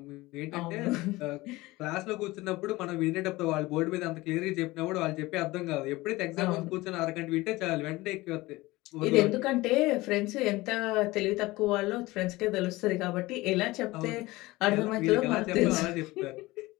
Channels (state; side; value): quieter; right; 20.1 dB